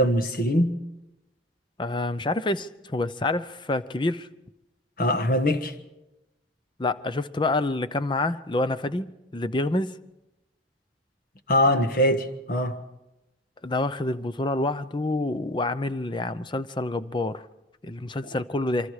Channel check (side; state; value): both; normal; correlation 0.35